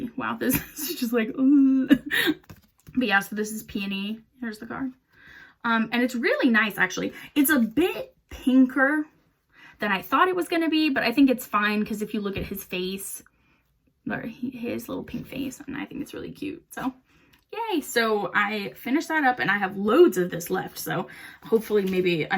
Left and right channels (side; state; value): both; identical; correlation 1.00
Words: Wow, this is just like but yeah, so this is Peony. Here's the card. And it's really nice, actually. It's a bit pinker than I thought it was gonna be, but I think it's fine because if you look at his face, or his little pink face, and I think it's really cute. So yay. So I finished that up, and I have loads of this left, so hopefully maybe